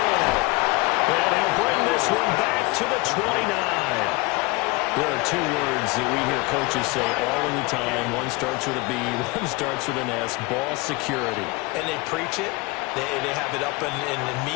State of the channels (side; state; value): right; quieter; 24.3 dB